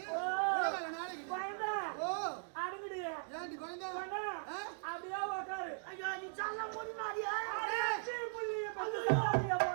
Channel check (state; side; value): silent; left; digital silence